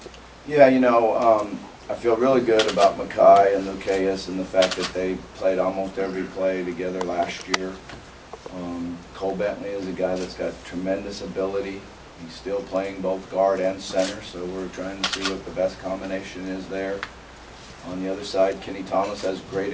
Yeah, you know, I feel really good about Mackay and Lucas and the fact that they played almost every play together last year. Cole Bentley is a guy that's got tremendous ability. He's still playing both guard and center, so we're trying to see what the best combination is there. On the other side, Kenny Thomas has great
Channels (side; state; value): both; identical; correlation 1.00